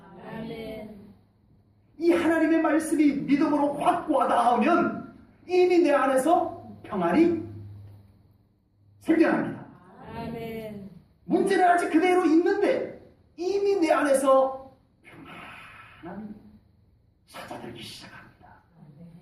아멘. 이 하나님의 말씀이 믿음으로 확 와닿으면 이미 내 안에서 평안이 생겨납니다. 아멘. 문제는 아직 그대로 있는데 이미 내 안에서 평안함이 찾아들기 시작합니다.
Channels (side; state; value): both; identical; correlation 1.00